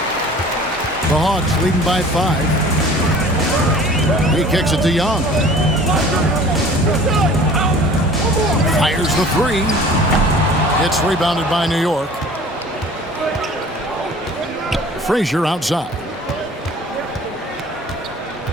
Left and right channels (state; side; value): normal; both; correlation 0.46